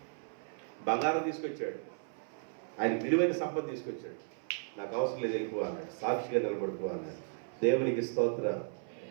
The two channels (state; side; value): silent; left; 54 dB below the other